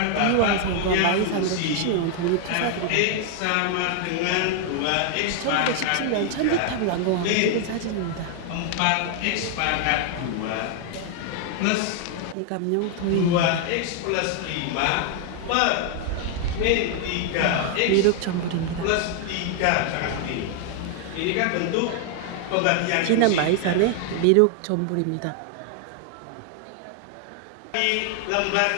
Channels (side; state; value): both; different; correlation 0.00